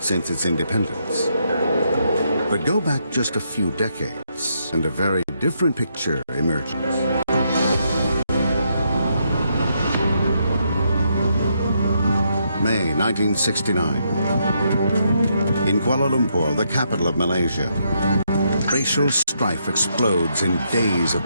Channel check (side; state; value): both; inverted; correlation -0.77